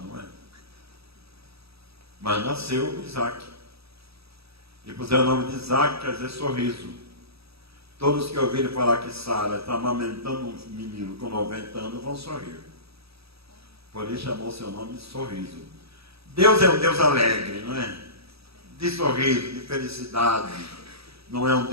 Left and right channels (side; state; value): left; late; 0.77 ms